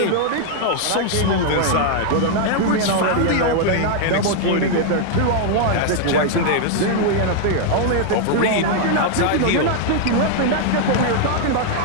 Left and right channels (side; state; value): both; different; correlation 0.00